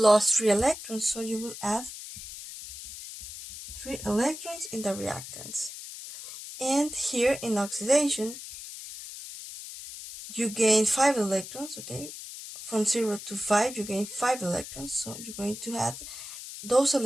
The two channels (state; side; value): noise; left; hiss, 11 dB below the sound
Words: 3 electrons, so you will add 3 electrons in the reactants. And here in oxidation, you gain 5 electrons, okay? From 0 to 5, you gain 5 electrons, so you're going to add those